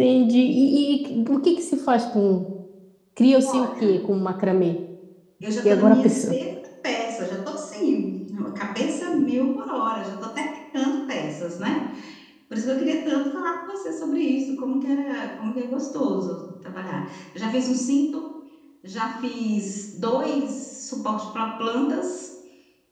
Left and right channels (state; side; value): identical; both; correlation 1.00